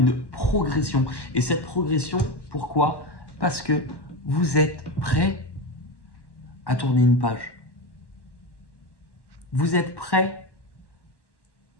progression. Et cette progression, pourquoi? Parce que vous êtes prêt à tourner une page. Vous êtes prêt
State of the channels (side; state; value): right; late; 1.1 ms